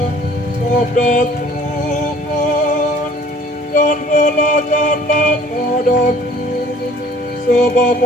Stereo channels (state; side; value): normal; both; correlation 0.53